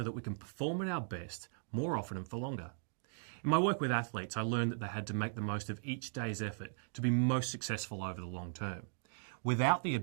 that we can perform at our best more often and for longer? In my work with athletes, I learned that they had to make the most of each day's effort to be most successful over the long term. Without the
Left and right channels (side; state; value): left; silent; digital silence